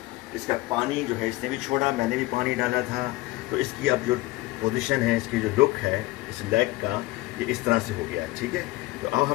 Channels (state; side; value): quieter; right; 19.2 dB